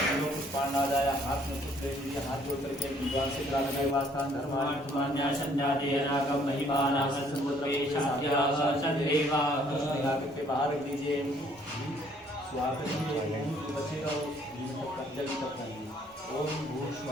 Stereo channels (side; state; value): both; normal; correlation 0.63